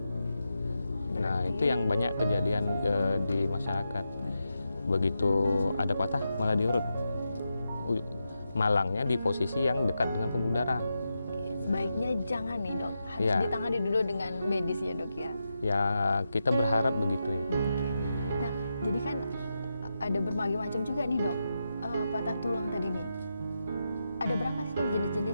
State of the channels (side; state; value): both; inverted; correlation -0.87